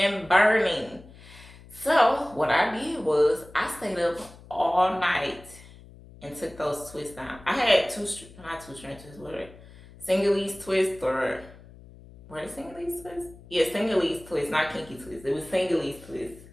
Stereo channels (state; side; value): noise; left; hum, 20 dB below the sound